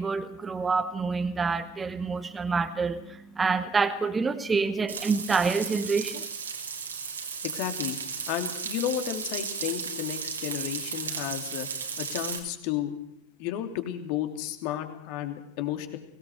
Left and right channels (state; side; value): normal; both; correlation 0.47